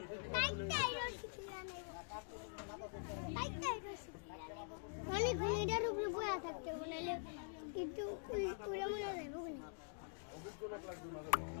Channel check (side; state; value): right; silent; digital silence